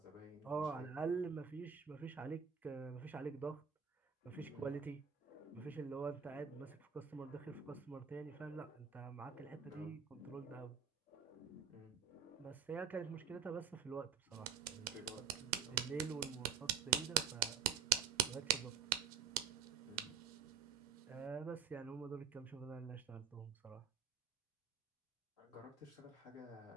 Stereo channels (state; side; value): quieter; left; 7.4 dB